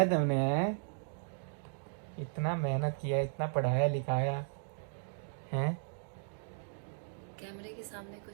तुमने? इतना मेहनत किया, इतना पढ़ाया लिखाया हैं? कैमरे के सामने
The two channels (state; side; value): silent; left; digital silence